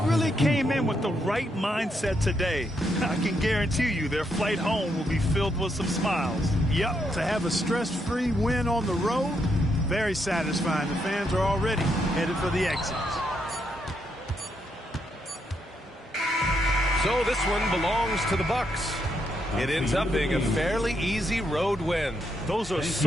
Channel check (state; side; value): normal; both; correlation 0.78